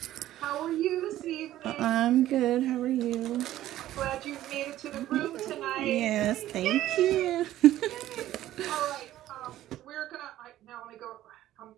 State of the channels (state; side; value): quieter; left; 13.7 dB